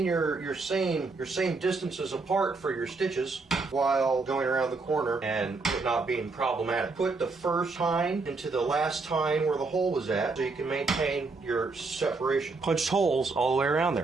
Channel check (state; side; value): quieter; left; 3.9 dB